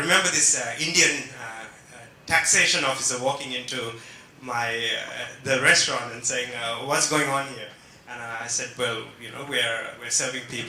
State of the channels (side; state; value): both; identical; correlation 1.00